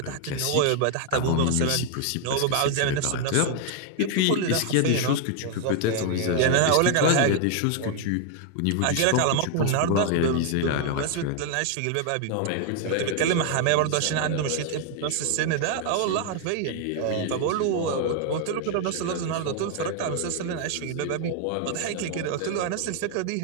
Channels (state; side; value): different; both; correlation 0.00